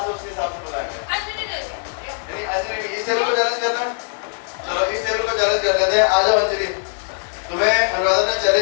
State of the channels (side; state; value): right; silent; digital silence